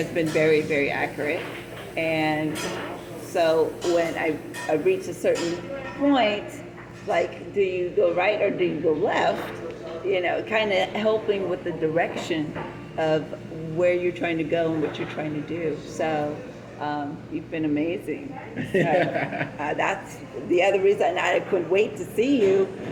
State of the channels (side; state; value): both; identical; correlation 1.00